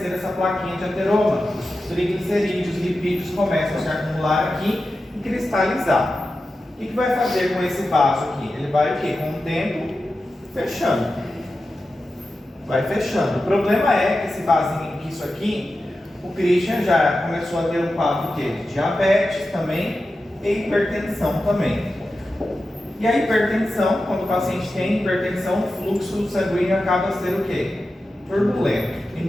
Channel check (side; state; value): both; normal; correlation 0.92